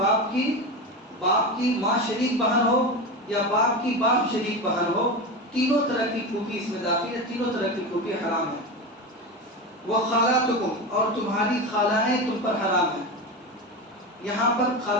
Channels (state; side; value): normal; both; correlation 0.21